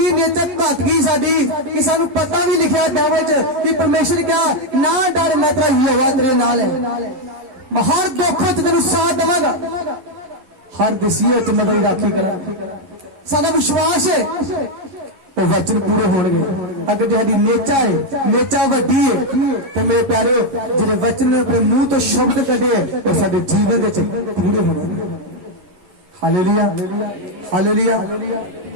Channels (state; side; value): late; left; 11 ms